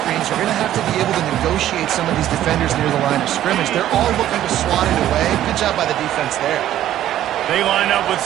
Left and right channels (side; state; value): left; quieter; 12.5 dB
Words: you're going to have to be able to negotiate some of these defenders near the line of scrimmage. They're all looking to swat it away. Good job by the defense there. They line up with